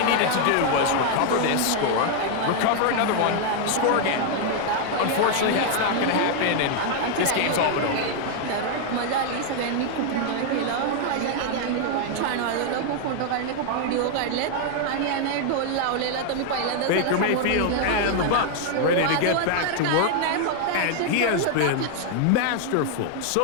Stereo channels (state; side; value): different; both; correlation 0.00